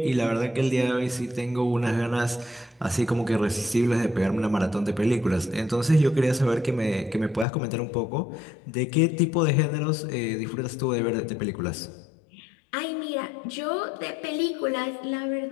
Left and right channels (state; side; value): drops out; right; at 7.5 s